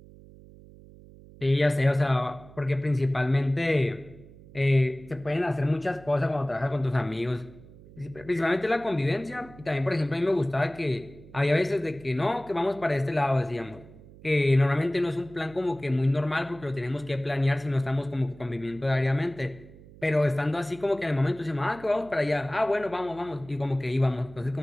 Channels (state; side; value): noise; right; hum, 21 dB below the sound